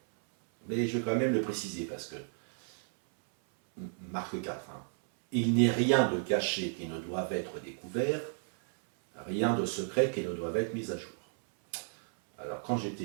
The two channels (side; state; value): left; silent; 56 dB below the other